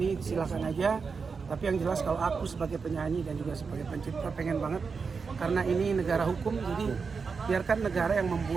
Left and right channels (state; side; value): quieter; left; 5.2 dB